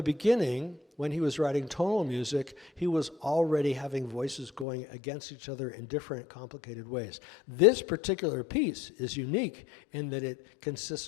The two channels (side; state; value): right; drops out; at 4.7 s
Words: beginning, when he was writing tonal music, he was already having voices going against each other in different complicated ways. This particular piece is unique in that it